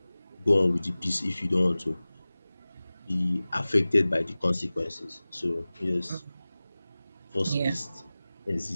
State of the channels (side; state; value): both; inverted; correlation -0.98